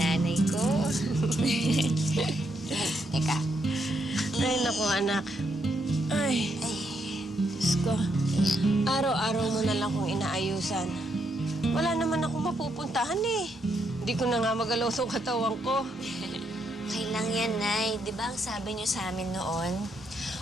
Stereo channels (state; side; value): normal; both; correlation 0.77